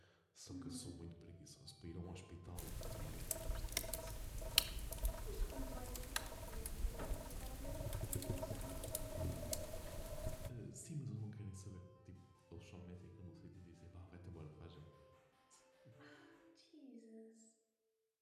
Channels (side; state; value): both; identical; correlation 1.00